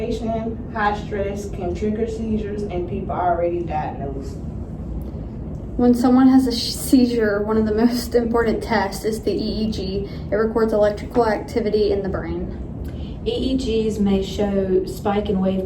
high stress can trigger seizures in people already diagnosed. When someone has a seizure, one of the most important tests is the EEG. It records electrical activity in the brain. EEGs may show spike and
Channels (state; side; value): identical; both; correlation 1.00